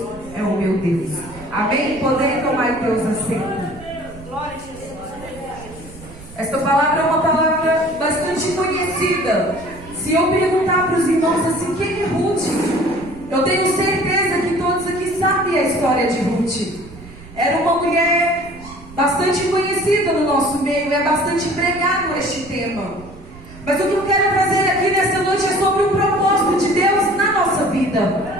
é o meu Deus. Amém? Poder tomar Deus assento. Esta palavra é uma palavra bastante conhecida. Se eu perguntar para os irmãos assim, quem é Ruth? Eu tenho certeza que todos aqui sabem a história de Ruth. Era uma mulher bastante conhecida no nosso meio, é bastante pregado este tema. Mas o que eu quero trazer aqui nessa noite é sobre o propósito de Deus na nossa vida.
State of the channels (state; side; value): noise; right; rumble, 18 dB below the sound